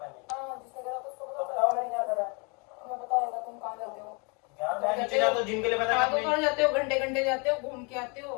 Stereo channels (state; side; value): quieter; right; 33.0 dB